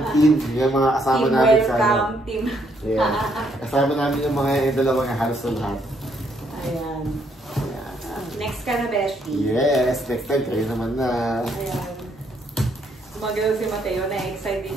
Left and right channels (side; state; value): both; normal; correlation 0.71